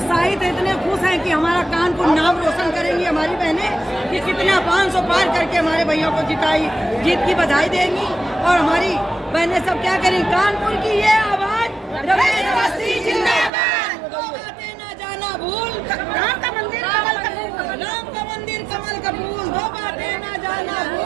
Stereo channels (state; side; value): drops out; left; at 13.5 s